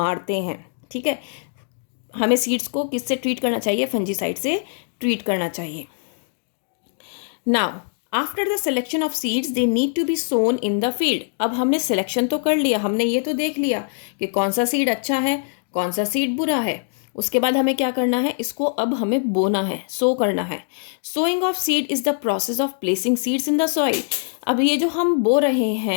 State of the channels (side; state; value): right; silent; digital silence